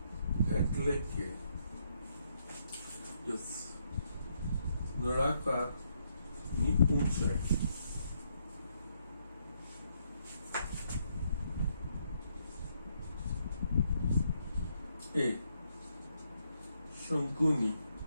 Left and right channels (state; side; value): inverted; both; correlation -0.75